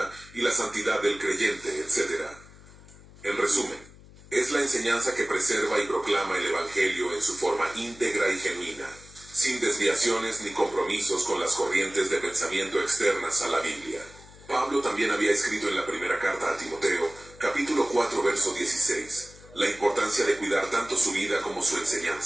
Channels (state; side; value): noise; left; hum, 21 dB below the sound